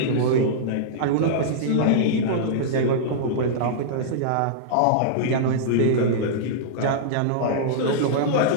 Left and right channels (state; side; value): different; both; correlation -0.03